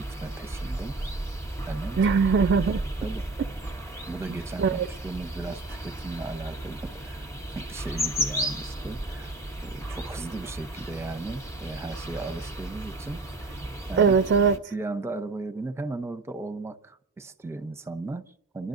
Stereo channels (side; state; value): left; quieter; 3.7 dB